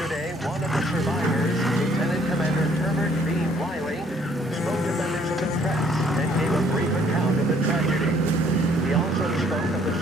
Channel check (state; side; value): normal; both; correlation 0.63